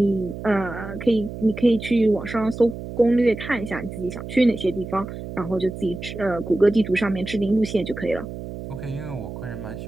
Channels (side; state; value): right; noise; hum, 9 dB below the sound